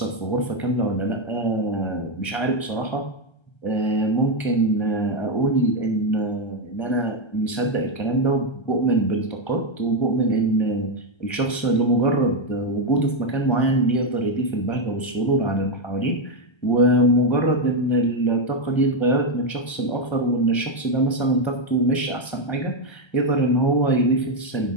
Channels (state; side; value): late; right; 1.3 ms